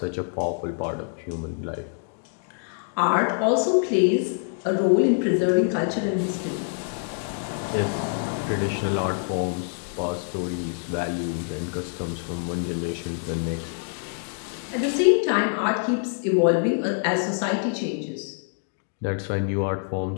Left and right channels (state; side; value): silent; right; digital silence